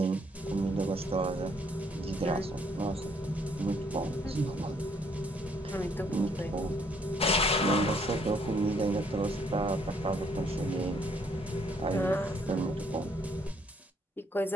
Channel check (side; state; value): both; normal; correlation 0.67